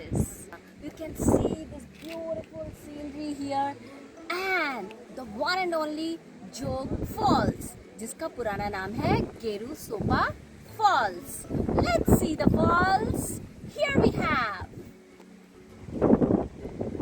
You can see this beautiful scenery here and the one and only Jog Falls, जिसका पुराना नाम है गेरू सोपा Falls. Let's see the falls. Here we have.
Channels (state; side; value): identical; both; correlation 1.00